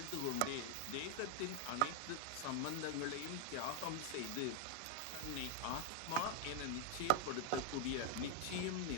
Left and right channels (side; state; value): both; different; correlation 0.00